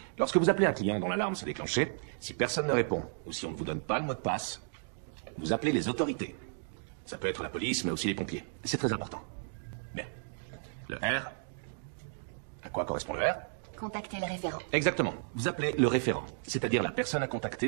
Lorsque vous appelez un client dont l'alarme s'est déclenchée, si personne ne répond, ou si on ne vous donne pas le mot de passe, vous appelez les autorités. Ça peut être la police, mais aussi les pompiers. C'est très important. Bien. Le R. À quoi correspond le R? Contactez le référent. Exactement. Vous appelez le référent, c'est-à-dire la personne à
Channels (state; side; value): silent; left; digital silence